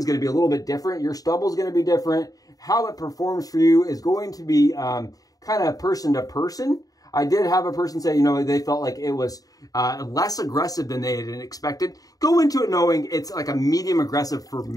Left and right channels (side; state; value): right; late; 0.18 ms